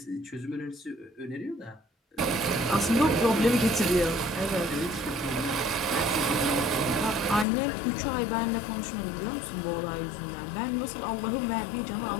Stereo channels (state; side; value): drops out; right; at 7.5 s